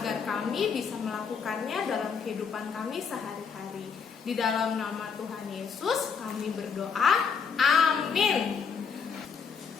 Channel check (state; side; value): quieter; right; 6.1 dB